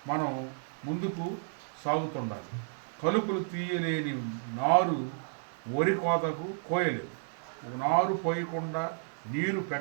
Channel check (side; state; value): left; silent; digital silence